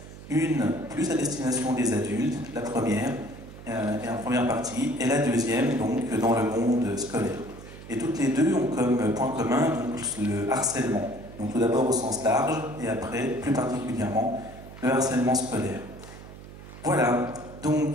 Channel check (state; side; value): noise; right; hum, 16 dB below the sound